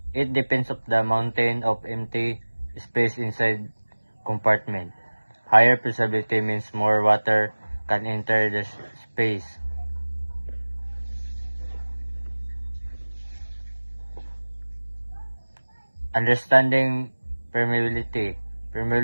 It depends on the amount of empty space inside compartment. Higher permeability means more water can enter the space. Understanding permeability.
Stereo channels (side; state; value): both; inverted; correlation -1.00